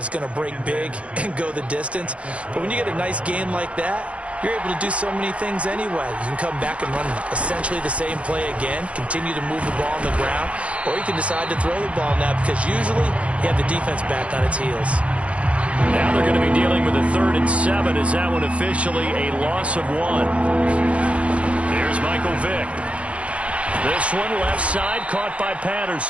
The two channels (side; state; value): left; late; 0.062 ms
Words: going to break big and go the distance. But when you get a nice gain like that, you're able to do so many things anyway. You can come back and run essentially the same play again, continue to move the ball on the ground, or you can decide to throw the ball now, because usually you have the defense back on its heels. Now they're going to be dealing with a 3rd and 7. Is that one officially a loss of 1? Here's Michael Vick. This one left side, caught by